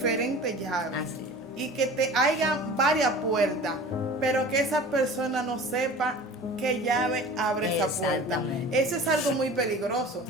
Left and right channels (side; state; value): both; normal; correlation 0.40